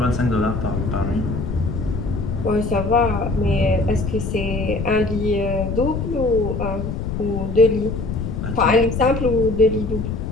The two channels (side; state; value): left; noise; rumble, 4 dB below the sound